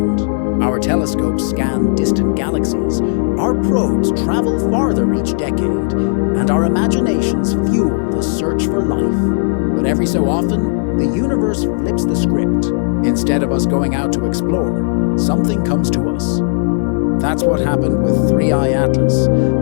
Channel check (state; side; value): silent; right; digital silence